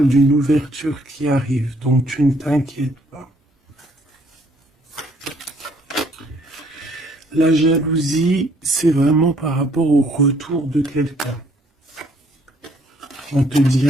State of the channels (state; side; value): normal; both; correlation 0.64